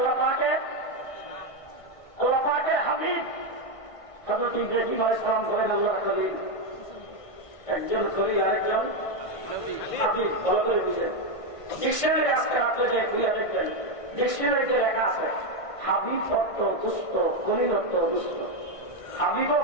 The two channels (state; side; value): late; right; 1.6 ms